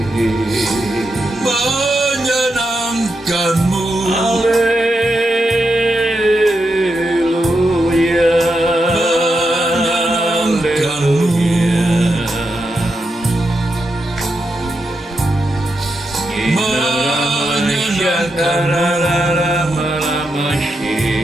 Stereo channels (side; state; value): both; normal; correlation 0.86